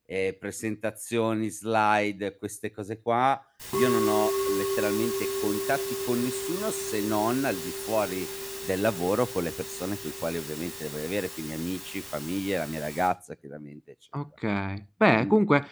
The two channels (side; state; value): both; identical; correlation 1.00